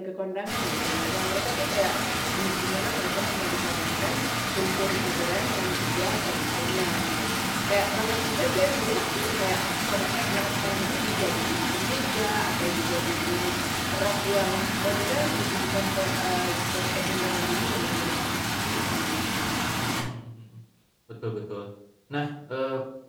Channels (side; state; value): both; identical; correlation 1.00